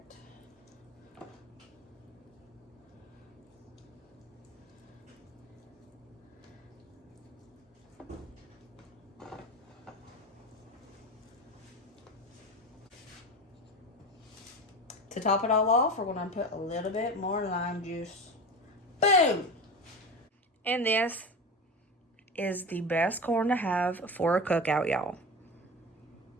To top it all off, we're going to put a little bit more lime juice. Boom! And this is the best corn to have for a cookout, y'all.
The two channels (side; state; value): both; normal; correlation 0.26